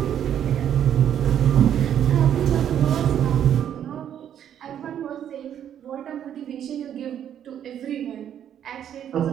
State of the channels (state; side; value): quieter; left; 9.8 dB